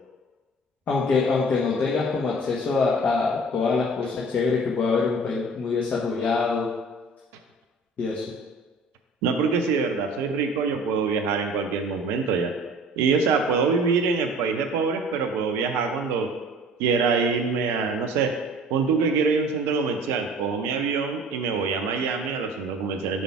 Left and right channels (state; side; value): normal; both; correlation 0.46